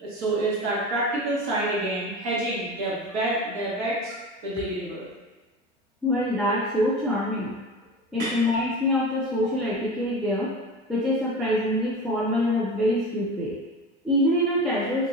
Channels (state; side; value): normal; both; correlation 0.30